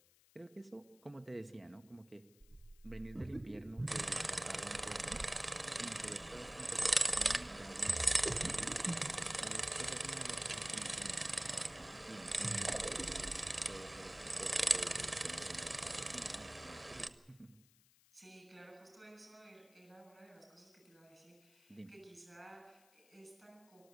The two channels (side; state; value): left; noise; hiss, 29 dB below the sound